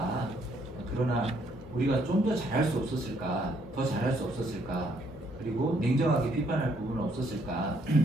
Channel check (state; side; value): normal; both; correlation 0.69